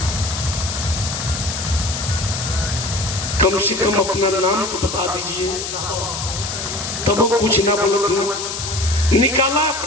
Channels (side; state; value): left; noise; hiss, 5 dB below the sound